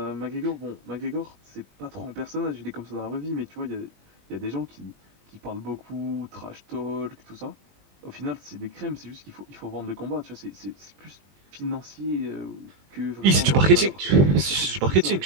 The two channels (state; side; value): late; left; 21 ms